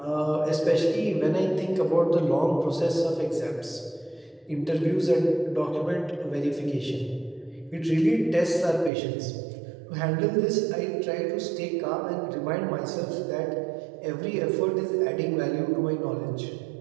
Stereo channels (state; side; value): drops out; left; at 8.9 s